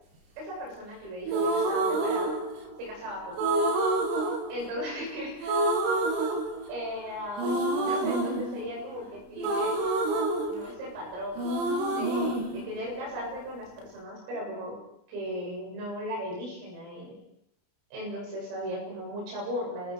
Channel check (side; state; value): left; late; 29 ms